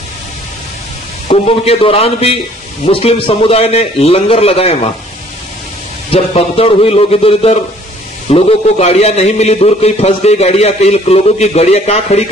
कुंभ के दौरान भी मुस्लिम समुदाय ने लंगर लगाए वहां। जब भगदड़ हुई, लोग इधर उधर, लोगों को गाड़ियां नहीं मिली, दूर कहीं फंस गई गाड़ियां, कई लोगों की गाड़ियां कहां खड़ी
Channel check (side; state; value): both; normal; correlation 0.57